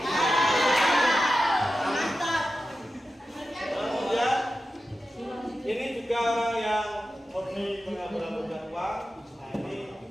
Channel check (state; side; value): normal; both; correlation 0.92